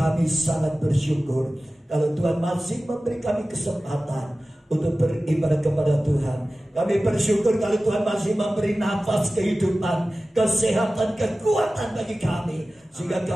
sangat bersyukur kalau Tuhan masih memberi kami kesempatan untuk beribadah kepada Tuhan. Kami bersyukur kalau Tuhan masih memberi nafas kehidupan, kesehatan, kekuatan bagi kami, sehingga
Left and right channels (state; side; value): normal; both; correlation 0.96